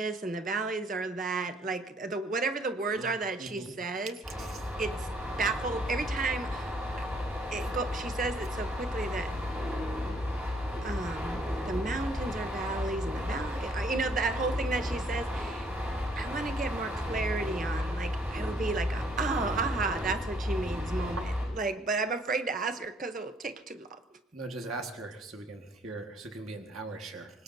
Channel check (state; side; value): normal; both; correlation 0.64